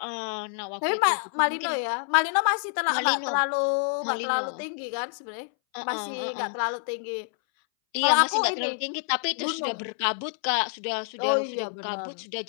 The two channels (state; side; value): silent; right; 60 dB below the other